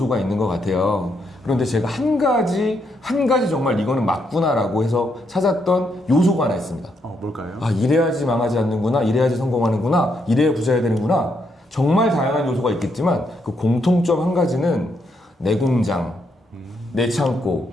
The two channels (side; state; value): both; normal; correlation 0.77